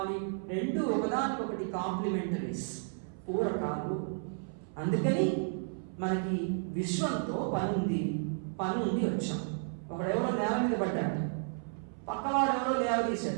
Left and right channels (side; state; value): left; silent; 56 dB below the other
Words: రెండు ఒకదానికొకటి కాంప్లిమెంటరీస్, పూరకాలు. అందుకని మనకి విశ్వంతో పని ఉండి వచ్చాం. ఒకడెవరో నేల మీద పడ్డాడు, పక్కవాడు ఎవరో